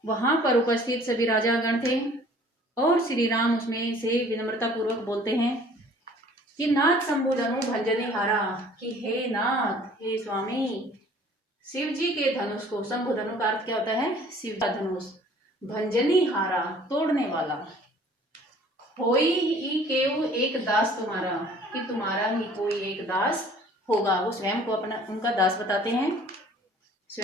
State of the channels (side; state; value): both; normal; correlation 0.53